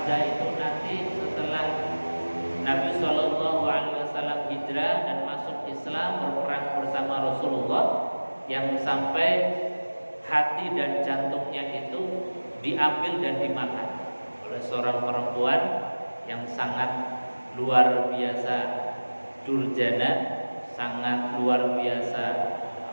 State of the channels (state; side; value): inverted; both; correlation -1.00